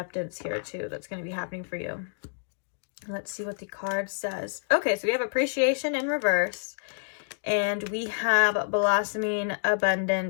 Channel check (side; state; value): right; silent; digital silence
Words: here too that's going to be happening for you. Let's see what the card says. Okay, so we have appreciation in reverse, and we have blossoming